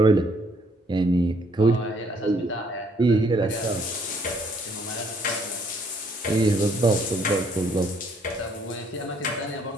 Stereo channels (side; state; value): both; normal; correlation 0.66